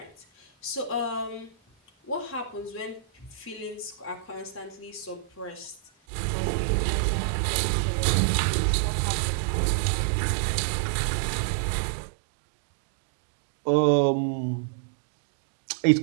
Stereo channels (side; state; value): left; drops out; at 5.9 s